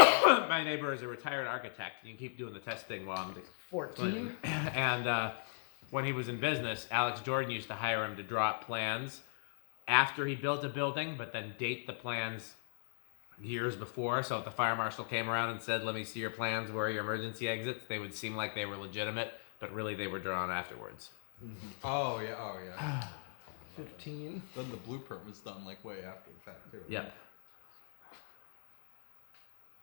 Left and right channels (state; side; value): silent; right; digital silence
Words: neighbor is a retired architect. You can keep doing the test thing while I'm 14. And when he was in business, Alex Jordan used to hire him to draw up plans after he built a building, but then date the plans years before. So if the fire marshal came around and said, "Let me see your plans, where are your emergency exits?" they would seem like they were legitimate, but really they were drawn afterwards. Oh yeah. 15. Then the blueprint was done like way after the fact too. Right? Yep.